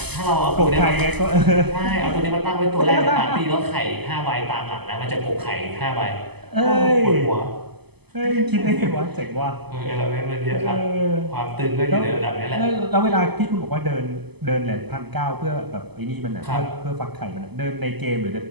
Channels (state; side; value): late; left; 0.98 ms